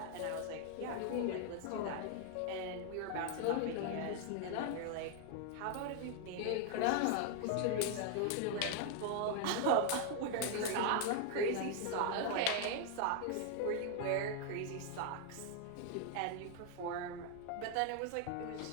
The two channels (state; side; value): different; both; correlation 0.00